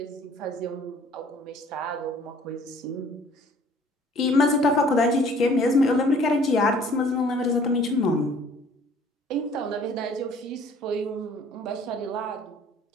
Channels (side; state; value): both; normal; correlation 0.55